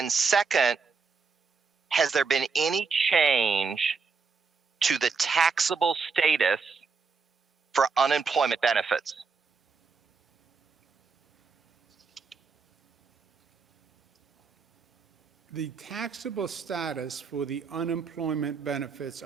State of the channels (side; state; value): left; quieter; 5.1 dB